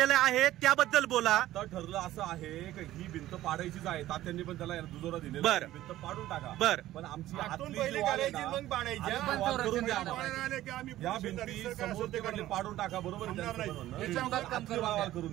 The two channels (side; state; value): left; quieter; 14.6 dB